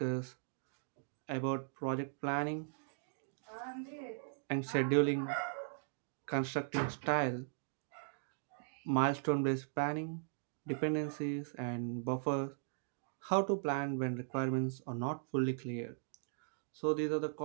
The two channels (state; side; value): silent; left; digital silence